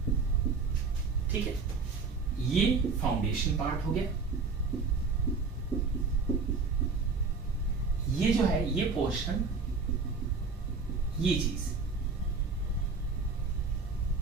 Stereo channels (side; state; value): left; quieter; 4.6 dB